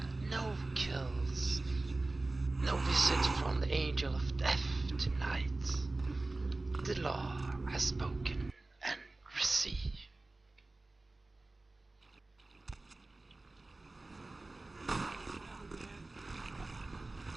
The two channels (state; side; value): quieter; left; 3.1 dB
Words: No kills. No visit from the angel of death tonight. The law has spoken and received.